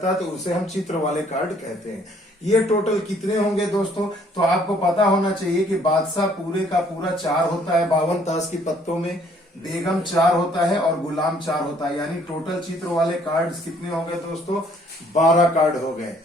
है, तो उसे हम चित्र वाले कार्ड कहते हैं। ये टोटल कितने होंगे दोस्तों, तो आपको पता होना चाहिए कि बादशाह पूरे का पूरा 4 होता है 52 ताश की पत्तों में, बेगम 4 होता है और गुलाम 4 होता है। यानी टोटल चित्र वाले कार्ड्स कितने हो गए दोस्तों, 12 कार्ड हो गए।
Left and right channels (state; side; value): normal; both; correlation 0.62